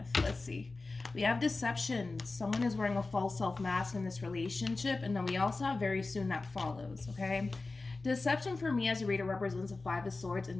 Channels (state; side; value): quieter; right; 3.5 dB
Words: Let's see. We have deception. Someone is wearing a false self-mask in this relationship, and then we also have very soon that follows, okay? Deception for me as a reader represents a Five of Swords